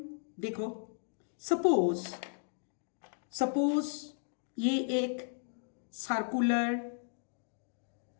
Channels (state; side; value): silent; right; 54 dB below the other